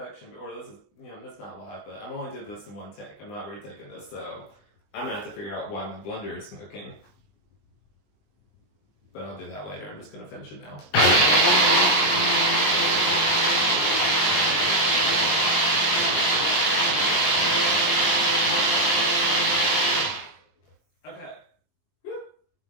or this is, you know, that's not live, but I'm only doing this in one take. I'm not retaking this, so I'm gonna have to figure out why my blender is smoking. But I'll do that later. I'm just gonna finish it now. Okay. Woo.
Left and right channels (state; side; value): late; right; 20 ms